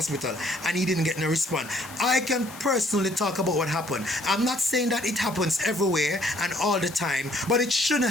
and he didn't get no response. I can personally talk about what happened. I'm not saying that it happens everywhere and all the time, but it shouldn't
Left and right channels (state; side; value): noise; left; hiss, 17 dB below the sound